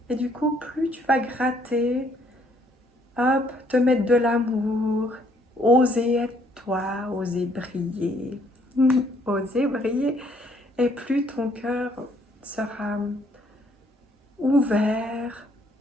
Et du coup, plus tu vas gratter, hop, te mettre de l'amour, oser être toi, oser briller, oser briller. Et plus ton cœur sera ouvert,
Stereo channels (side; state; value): both; normal; correlation 0.66